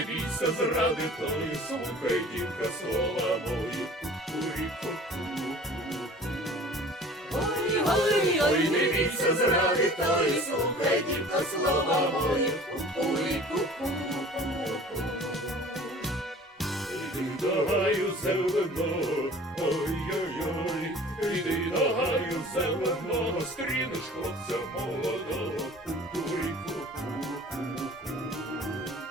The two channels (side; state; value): both; normal; correlation 0.46